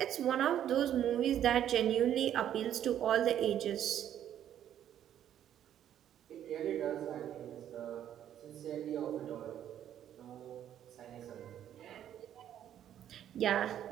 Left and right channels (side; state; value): left; quieter; 10.6 dB